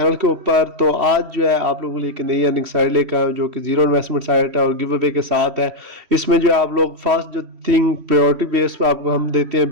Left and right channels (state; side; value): late; left; 3.1 ms